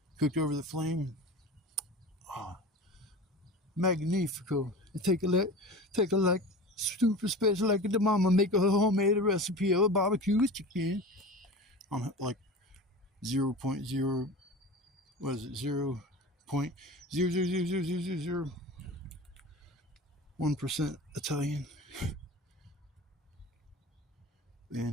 Cooked over the flame. Oh, magnifico. Take a like super special like the mama make a homemade recipe of a barbecue chicken. I'm like 0.0, what is it, 0.0000001% Italian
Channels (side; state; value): both; normal; correlation 0.34